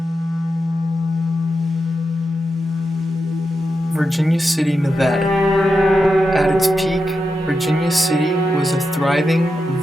Virginia City, Nevada. At its peak, Virginia City was a thriving,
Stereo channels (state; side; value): normal; both; correlation 0.88